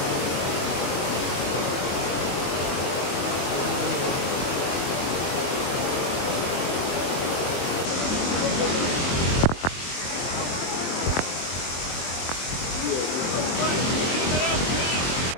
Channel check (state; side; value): late; right; 23 ms